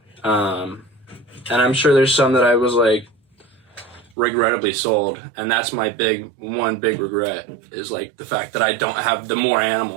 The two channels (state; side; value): drops out; left; at 4.1 s